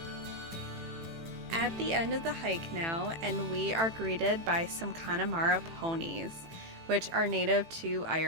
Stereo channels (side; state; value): left; late; 18 ms